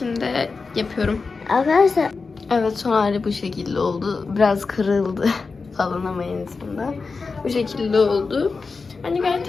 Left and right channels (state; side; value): quieter; right; 4.4 dB